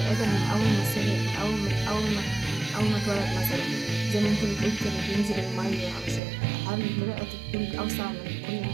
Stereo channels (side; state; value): left; drops out; at 6.2 s